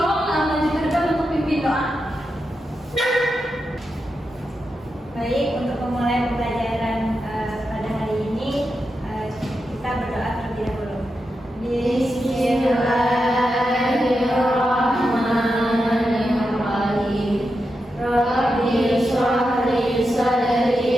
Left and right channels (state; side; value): normal; both; correlation 0.88